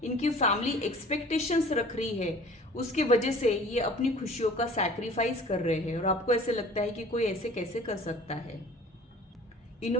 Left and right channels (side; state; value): both; normal; correlation 0.47